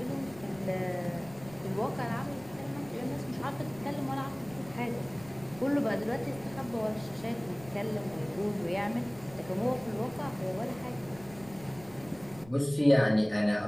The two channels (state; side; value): noise; right; rumble, 19 dB below the sound